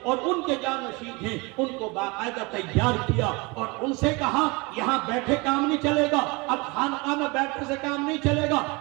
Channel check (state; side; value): quieter; left; 26.6 dB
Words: اور ان کے جانشین ہیں، ان کو باقاعدہ تیار کیا اور ان سے کہا یہاں بیٹھے کام نہیں چلے گا، اب خانقاہ میں بیٹھنے سے کام نہیں چلے گا،